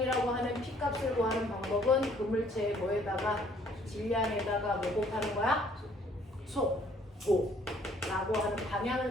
하는 P값을 구하는 방법은 그물체의 뭐에다가 질량에다가 뭐 곱하는 거야? 속도 라고 하는 방향을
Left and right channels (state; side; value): normal; both; correlation 0.61